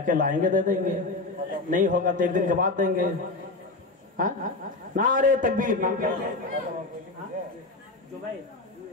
लाएंगे दे देंगे, नहीं होगा तो एक दिन के बाद देंगे। हाँ, नारे तकबीर, नाम क्या है?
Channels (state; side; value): quieter; right; 3.3 dB